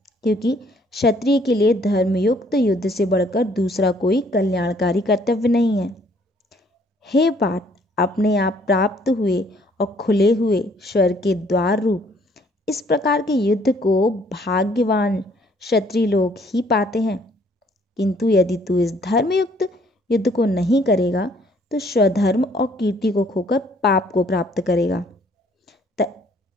क्योंकि क्षत्रिय के लिए धर्मयुक्त युद्ध से बढ़कर दूसरा कोई कल्याणकारी कर्तव्य नहीं है। हे पार्थ, अपने आप प्राप्त हुए और खुले हुए स्वर्ग के द्वार रूप इस प्रकार के युद्ध को भाग्यवान क्षत्रिय लोग ही पाते हैं। किंतु यदि तू इस धर्मयुक्त युद्ध को नहीं करेगा तो स्वधर्म और कीर्ति को खोकर पाप को प्राप्त करेगा।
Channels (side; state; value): both; normal; correlation 0.62